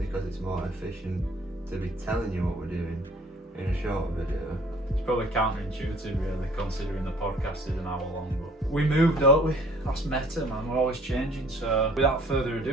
it's more efficient to be telling you what we're doing in a short video. It's probably counterintuitive, really, considering the podcast is an hour long. But we move, don't we? That's meta, man. We're always changing. So, without further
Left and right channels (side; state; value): both; normal; correlation 0.55